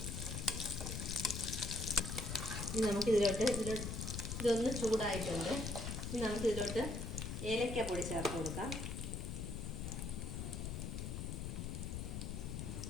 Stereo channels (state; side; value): noise; left; rumble, 4 dB below the sound